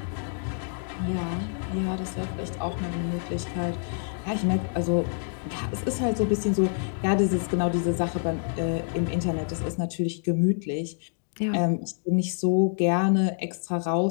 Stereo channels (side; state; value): right; silent; 59 dB below the other